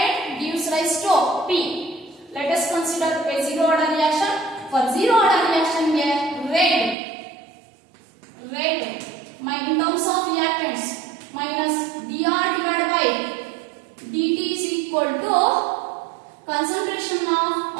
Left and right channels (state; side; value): drops out; left; at 7.0 s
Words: gives rise to P. Let us consider a zero order reaction. For zero order reaction rate in terms of reactants minus dr divided by dt is equal to concentration of